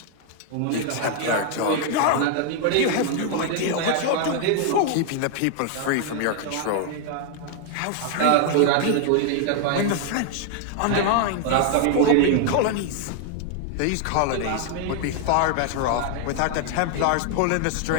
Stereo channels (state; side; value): different; both; correlation 0.00